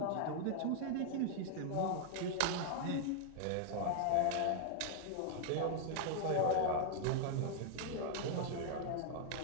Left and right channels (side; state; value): both; different; correlation -0.01